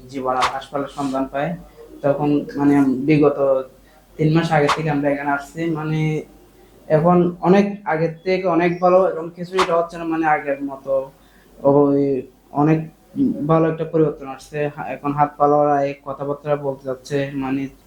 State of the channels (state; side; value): identical; both; correlation 1.00